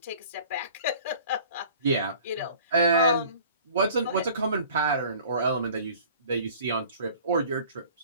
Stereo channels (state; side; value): inverted; both; correlation -0.48